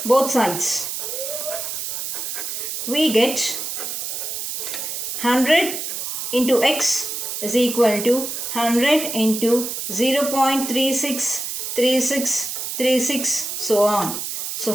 both sides, we get 100 into x is equal to 100 into 0.363636, so on. So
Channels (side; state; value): right; noise; hiss, 4 dB below the sound